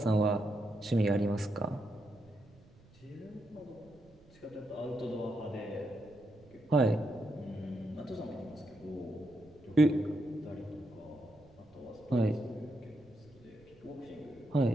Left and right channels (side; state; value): right; noise; rumble, 26 dB below the sound